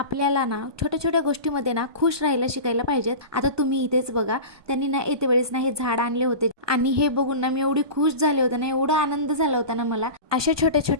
ना छोट्या छोट्या गोष्टीमध्ये ना खुश राहायला शिकायला पाहिजेत। आता तुम्ही इथेच बघा, त्यांनी ना येते वेळेस ना हे झाड आणले होते आणि हे बघून ना मी एवढी खुश झाले होते ना, एवढा आनंद झाला होता ना मला। अशा छोट्या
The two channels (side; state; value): left; late; 1.2 ms